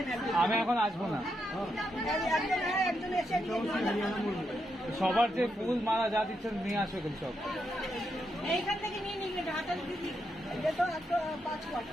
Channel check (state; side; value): normal; both; correlation 0.82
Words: আমি এখন আসবো না। সবার যে ফুল মালা যা দিচ্ছেন নিয়ে আসো এগুলো সব। এইখান থেকে নিয়ে নিবি, হাতে দিবি। এটা তো একটা 5 কোয়াট।